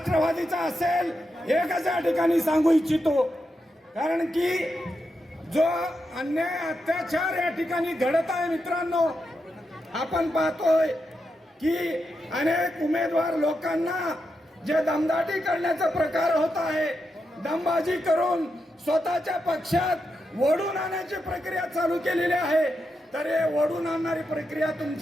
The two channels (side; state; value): both; normal; correlation 0.86